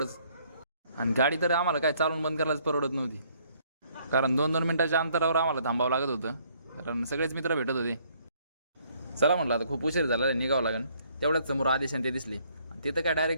आणि गाडी तर आम्हाला काय चालून बंद करायलाच परवडत नव्हती, कारण 2-2 मिनिटाच्या अंतरावर आम्हाला थांबावं लागत होतं, कारण सगळेच मित्र भेटत होते. चला म्हटलं आता खूप उशीर झाला, निघावं लागेल. तेवढ्याच समोर आदेश आणि ते दिसले आणि तिथं काय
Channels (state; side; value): inverted; both; correlation -0.65